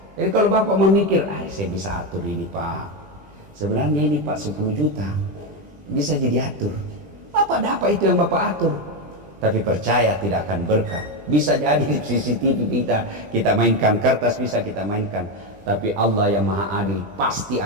Jadi kalau Bapak memikir, saya bisa atur ini Pak, sebenarnya ini Pak 10 juta bisa jadi atur, Bapak dapat itu yang Bapak atur. Tapi percaya tidak akan berkah. Bisa jadi di CCTV kita mainkan, kertas bisa kita mainkan, tapi Allah yang maha adil pasti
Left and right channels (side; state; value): left; late; 20 ms